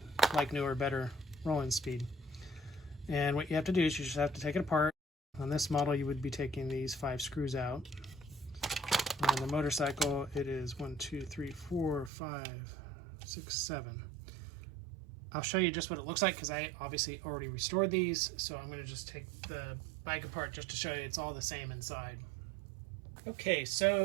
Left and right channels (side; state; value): left; drops out; at 12.1 s